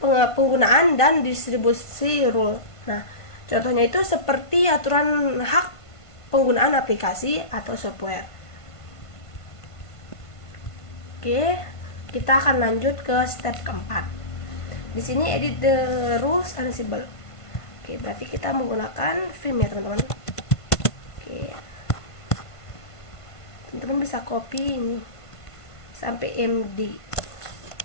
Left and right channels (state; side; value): late; right; 1.5 ms